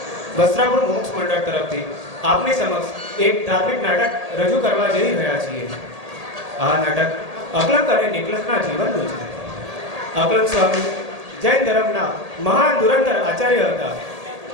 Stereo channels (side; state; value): left; late; 1.8 ms